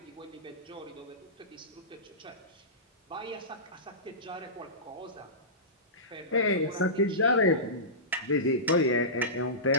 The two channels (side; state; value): both; normal; correlation -0.19